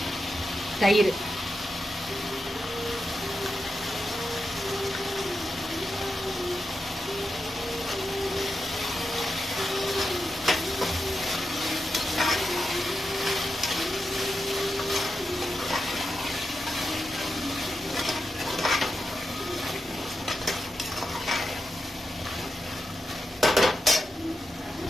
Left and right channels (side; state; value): both; normal; correlation 0.88